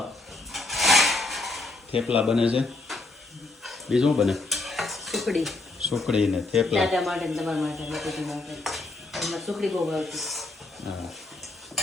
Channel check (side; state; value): right; quieter; 3.2 dB